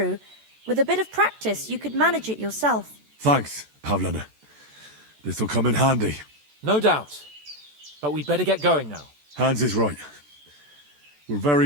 With a bit of practice, you could manage it yourself. Thanks, Pavlana. This'll come in handy. No doubt. But we'd better get going now. Hans is right. We're very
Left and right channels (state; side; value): late; left; 14 ms